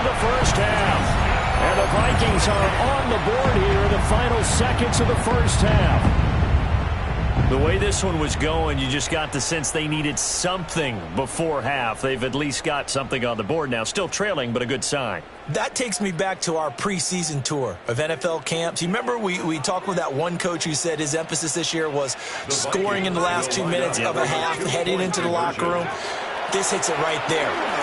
the first half. And the Vikings are on the board here in the final seconds of the first half. The way this one was going, you just got the sense they needed something before half. They've at least got something on the board now. Still trailing, but a good sign. That takes me back to our preseason tour of NFL camps. You remember we talked with that one coach who said his emphasis this year was scoring in the last 2 minutes of a half, heading into the locker room. This hits it right there.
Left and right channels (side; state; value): both; identical; correlation 1.00